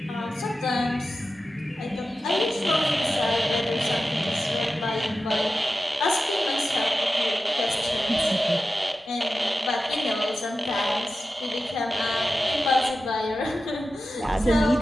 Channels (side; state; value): both; normal; correlation 0.93